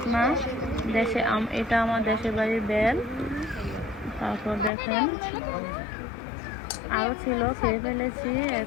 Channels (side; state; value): right; drops out; at 4.7 s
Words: এটা আমার দেশের বাড়ির বেল। তারপর দেখেন আরও ছিল, খেয়ে ফেলেছি।